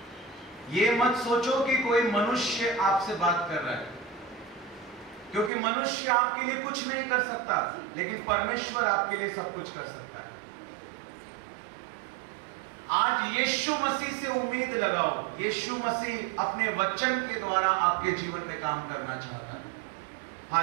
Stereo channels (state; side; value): drops out; left; at 5.5 s